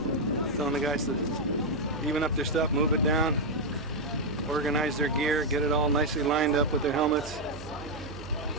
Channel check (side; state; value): right; noise; hum, 13 dB below the sound